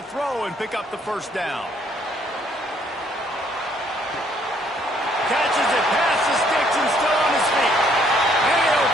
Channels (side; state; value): both; normal; correlation 0.66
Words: throw and pick up the first down. Catches it past the sticks and still on his feet. And he'll